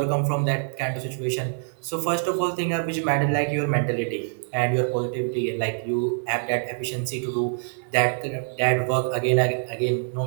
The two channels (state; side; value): silent; left; 60 dB below the other